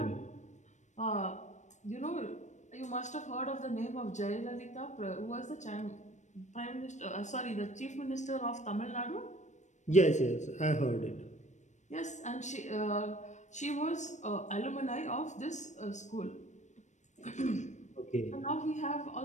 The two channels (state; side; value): late; right; 0.34 ms